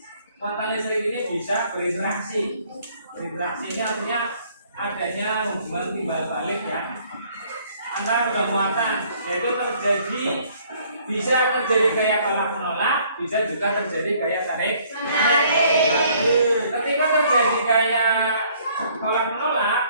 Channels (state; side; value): inverted; both; correlation -0.61